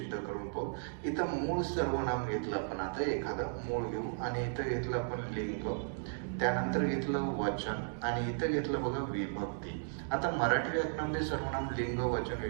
करून पाहू. इथं मूळ सर्वनाम घेतलं आपण, आता एखादं मूळ घेऊ आणि इथं घेतलं आपण लिंग, त्यानंतर घेतलं वचन आणि इथं घेतलं बघा विभक्ती. आता मराठी व्याकरणामध्ये सर्वनाम लिंग, वचन,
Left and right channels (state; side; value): silent; left; digital silence